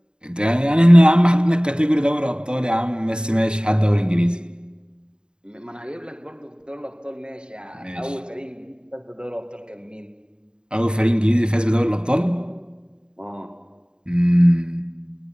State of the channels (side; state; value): left; late; 0.049 ms